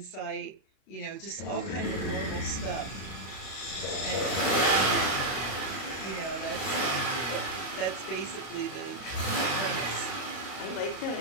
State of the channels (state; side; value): late; right; 33 ms